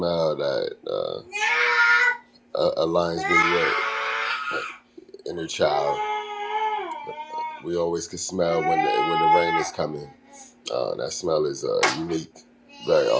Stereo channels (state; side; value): identical; both; correlation 1.00